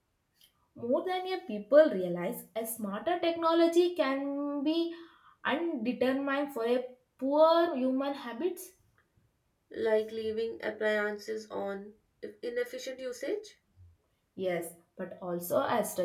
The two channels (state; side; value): identical; both; correlation 1.00